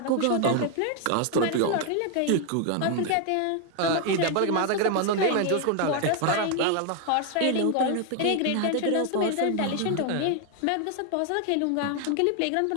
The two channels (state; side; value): different; both; correlation 0.00